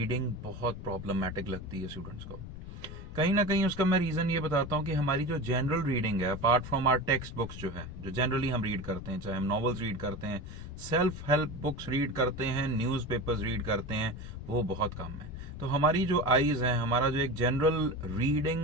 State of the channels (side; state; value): left; noise; rumble, 12 dB below the sound